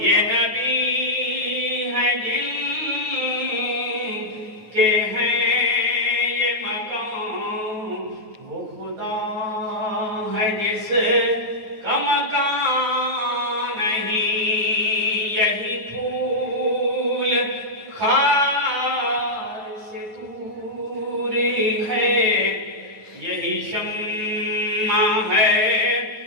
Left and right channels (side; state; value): left; late; 9.3 ms